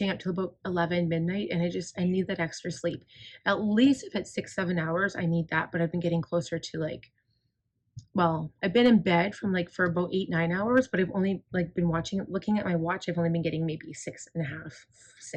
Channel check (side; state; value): both; identical; correlation 1.00